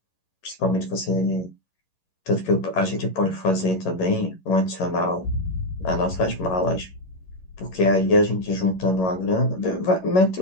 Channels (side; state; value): right; late; 11 ms